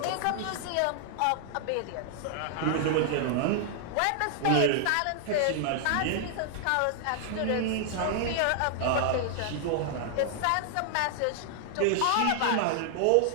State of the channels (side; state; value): both; different; correlation 0.00